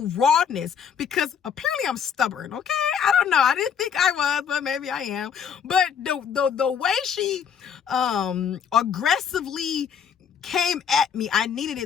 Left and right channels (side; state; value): right; quieter; 7.5 dB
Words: rawness, because apparently I'm stubborn, okay? I don't know. I didn't think I was, but maybe I am. But the way she aggressively came at me, I needed